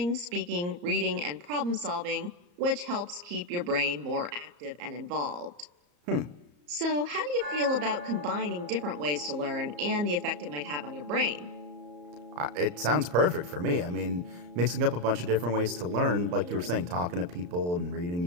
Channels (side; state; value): left; late; 34 ms